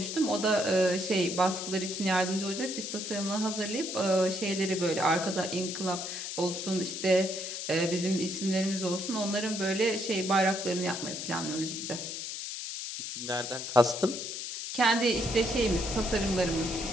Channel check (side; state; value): left; noise; hiss, 6 dB below the sound